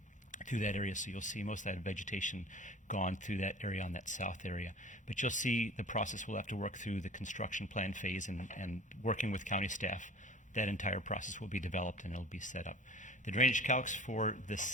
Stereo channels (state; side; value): normal; both; correlation 0.42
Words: through that area. So you'll see most of that vegetation gone through that area on that south area. But you'll see the process will have to work through the construction plan phase and working with county staff. That entire process will be developed and it'll be set up. The drainage calcs for this